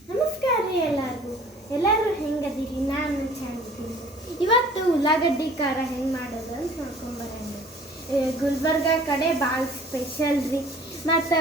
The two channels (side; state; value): both; normal; correlation 0.50